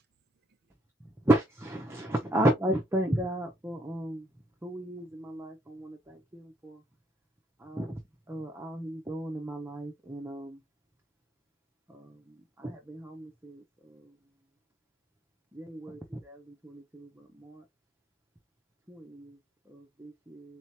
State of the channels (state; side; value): normal; both; correlation 0.73